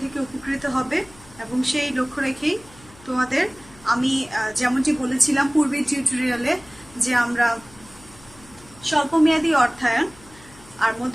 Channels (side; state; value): left; noise; hum, 24 dB below the sound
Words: থেকে উপকৃত হবে এবং সেই লক্ষ্য রেখেই তোমাদের আমি যেমনটি বলেছিলাম পূর্বের টিউটোরিয়ালে যে আমরা স্বল্পমেয়াদী অর্থায়ন আর